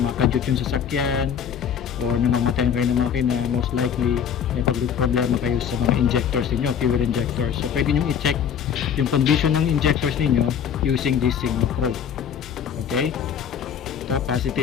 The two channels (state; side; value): quieter; right; 8.1 dB